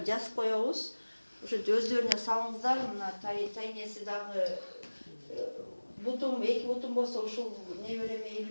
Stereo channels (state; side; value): inverted; both; correlation -1.00